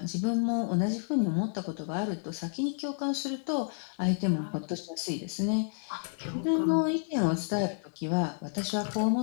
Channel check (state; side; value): silent; right; digital silence